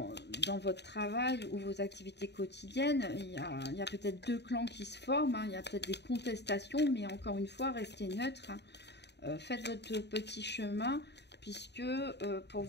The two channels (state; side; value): late; right; 0.50 ms